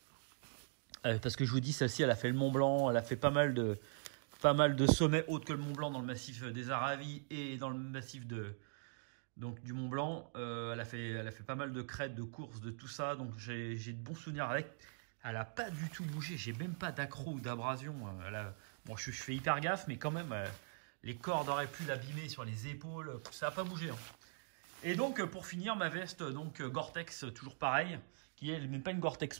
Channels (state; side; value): silent; left; digital silence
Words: Parce que je vous dis, celle-ci, elle a fait le Mont Blanc, elle a fait pas mal de sommets autres que le Mont Blanc dans le massif des Aravis et dans le massif du Mont Blanc. Elle a fait pas mal de crêtes, de courses, de tout ça, donc j'ai de bons souvenirs avec. Elle n'a pas du tout bougé, j'ai même pas d'accro ou d'abrasion. Bon, je fais hyper gaffe, mais quand même, les cordes auraient pu l'abîmer sur les épaules, ça n'a pas bougé. Hein. Et donc, pour finir, ma veste, donc Gore-Tex, toujours pareil, qui est même pas une Gore-Tex